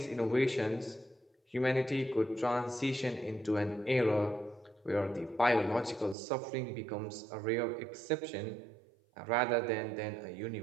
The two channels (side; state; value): left; drops out; at 6.2 s